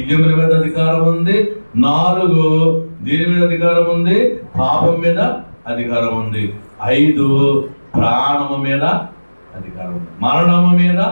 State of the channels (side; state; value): both; inverted; correlation -1.00